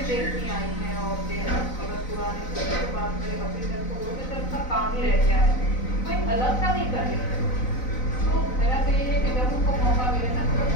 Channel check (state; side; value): late; right; 4.0 ms